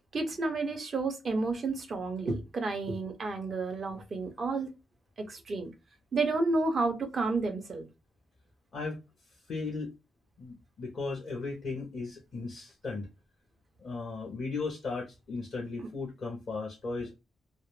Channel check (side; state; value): both; normal; correlation 0.80